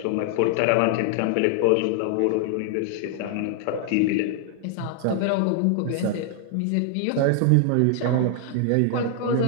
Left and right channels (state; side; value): different; both; correlation 0.00